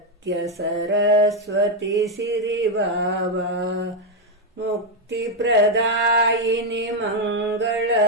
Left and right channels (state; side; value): normal; both; correlation 0.02